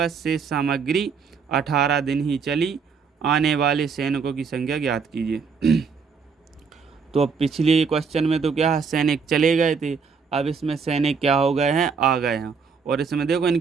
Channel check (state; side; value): quieter; left; 5.6 dB